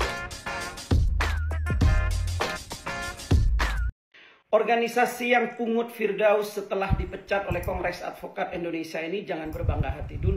Organisasi yang pungut Firdaus setelah dipecat oleh Kongres Advokat Indonesia ini jangan berbangga hati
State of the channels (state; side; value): identical; both; correlation 1.00